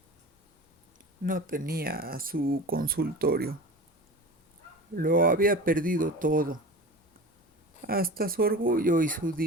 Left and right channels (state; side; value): normal; both; correlation 0.33